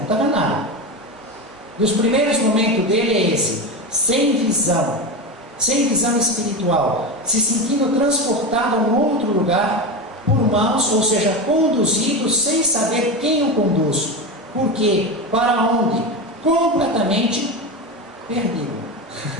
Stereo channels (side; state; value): both; normal; correlation 0.20